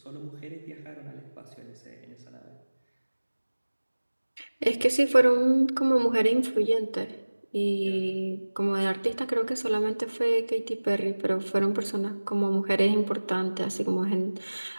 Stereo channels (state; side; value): inverted; both; correlation -1.00